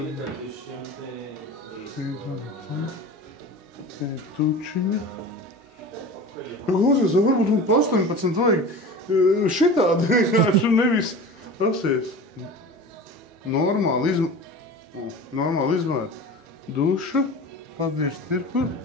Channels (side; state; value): both; normal; correlation 0.35